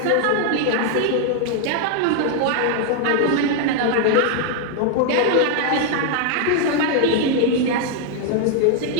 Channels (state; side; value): different; both; correlation 0.00